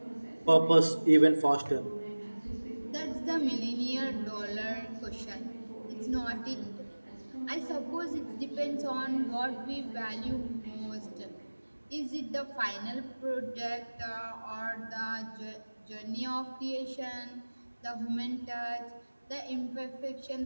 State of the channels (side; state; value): both; inverted; correlation -1.00